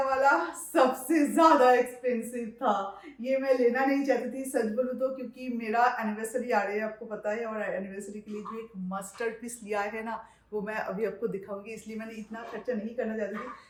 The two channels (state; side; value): identical; both; correlation 1.00